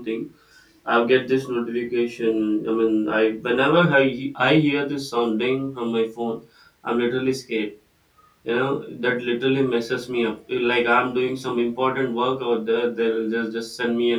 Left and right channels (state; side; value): identical; both; correlation 1.00